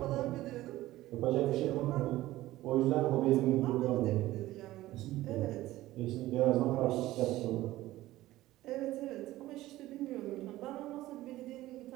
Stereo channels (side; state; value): left; quieter; 16.3 dB